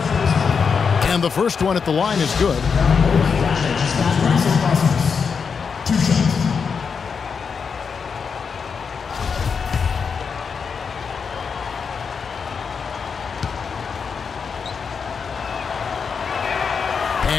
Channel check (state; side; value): quieter; right; 5.9 dB